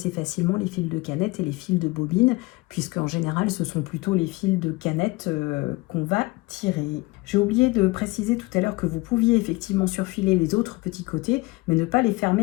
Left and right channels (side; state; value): right; quieter; 22.9 dB